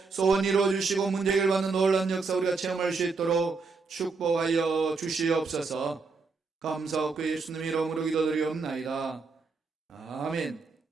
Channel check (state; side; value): quieter; left; 4.4 dB